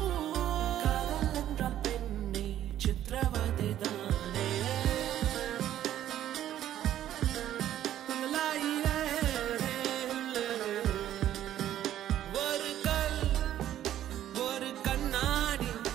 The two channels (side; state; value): left; quieter; 11.9 dB